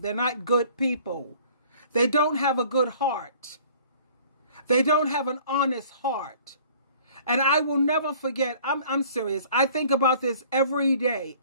not good people. They don't have a good heart. They don't have an honest heart. And I will never forget, I'm serious. I think about this every day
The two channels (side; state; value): both; inverted; correlation -0.52